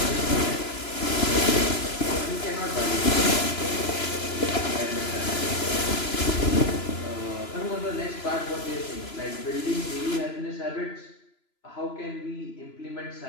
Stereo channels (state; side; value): late; right; 3.0 ms